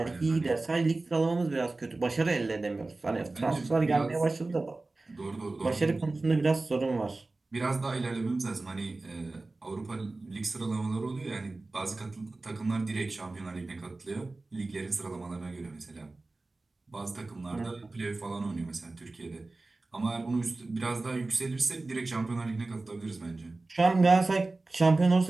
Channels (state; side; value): quieter; left; 3.3 dB